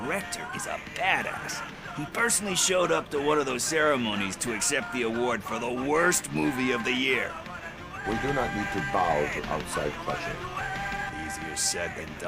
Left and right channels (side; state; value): both; identical; correlation 1.00